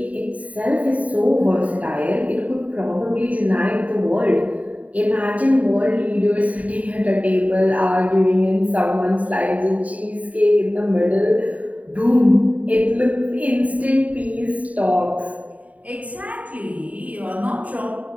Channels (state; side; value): late; left; 0.069 ms